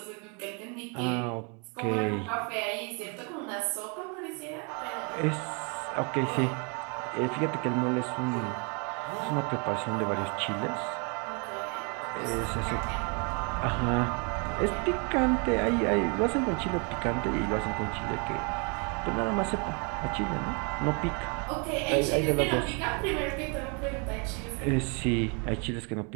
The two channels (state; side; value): quieter; left; 34.5 dB